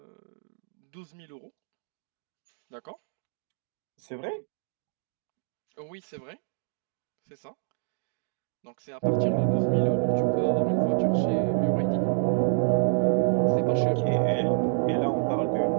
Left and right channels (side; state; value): left; silent; digital silence